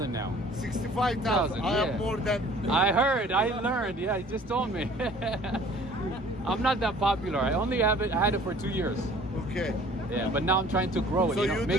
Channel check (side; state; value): both; normal; correlation 0.51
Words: now. 65,000. I yeah. have more than. I heard, I learned. Yeah, he just told me. I'm not that popular. I only had it for 2 years. Okay. Yeah, but now I'm trying to grow it, So you